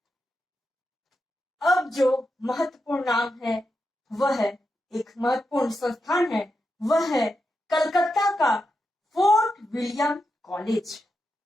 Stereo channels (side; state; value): both; normal; correlation 0.87